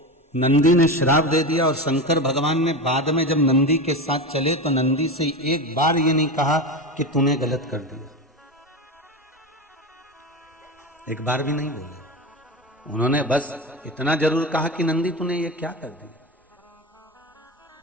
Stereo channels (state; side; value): normal; both; correlation 0.22